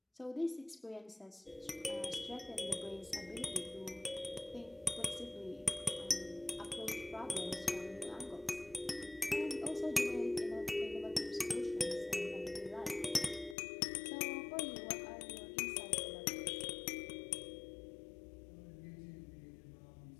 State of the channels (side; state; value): right; drops out; at 13.6 s